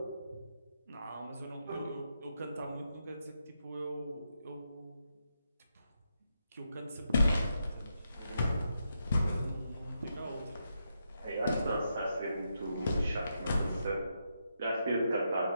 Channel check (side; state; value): both; inverted; correlation -0.83